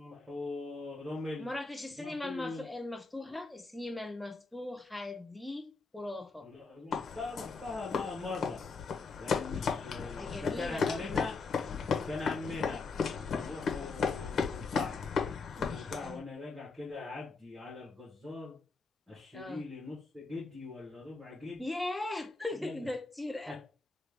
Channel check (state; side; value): quieter; right; 4.1 dB